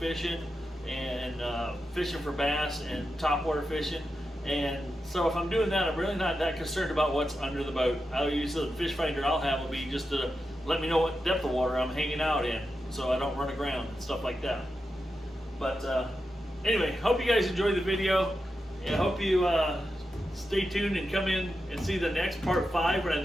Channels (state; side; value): normal; both; correlation 0.89